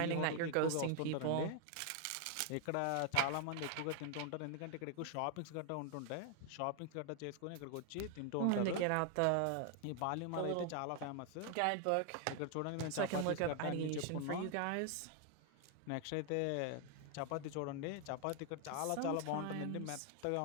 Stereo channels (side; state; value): both; different; correlation 0.00